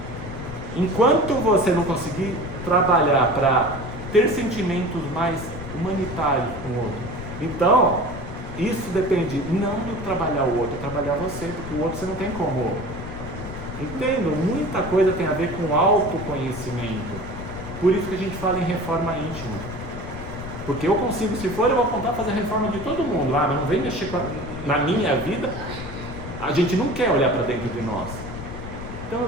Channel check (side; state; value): left; noise; rumble, 10 dB below the sound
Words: Enquanto você não conseguir trabalhar para ter sentimentos mais humanitários com o outro, então, isso depende não de trabalhar o outro, é trabalhar você, porque o outro você não tem como. Entendo, muita coisa tem a ver com autoconhecimento. Por isso que a gente fala em reforma íntima. Porque eu consigo, se for, eu vou contar fazer a reforma de todo mundo. Mas não vem mexer na minha vida. A gente não quer olhar para dentro de nós. Então eu